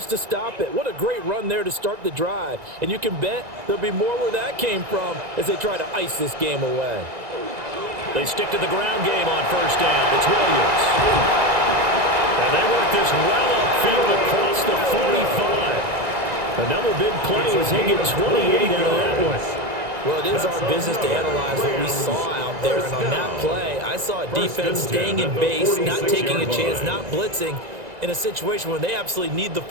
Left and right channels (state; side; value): late; left; 2.0 ms